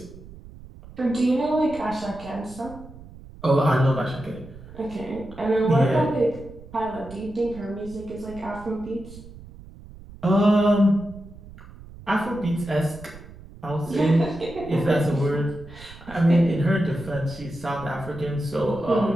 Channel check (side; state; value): right; noise; rumble, 17 dB below the sound